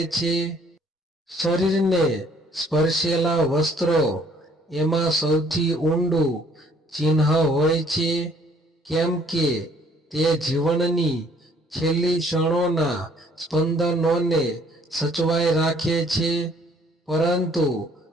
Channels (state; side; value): normal; both; correlation 0.61